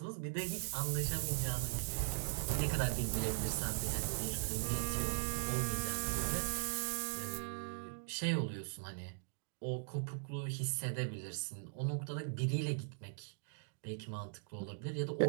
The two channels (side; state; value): left; silent; digital silence